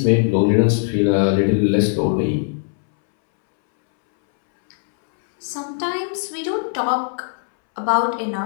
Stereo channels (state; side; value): silent; right; 66 dB below the other